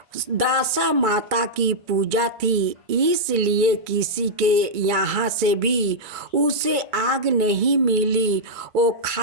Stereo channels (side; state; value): left; late; 2.3 ms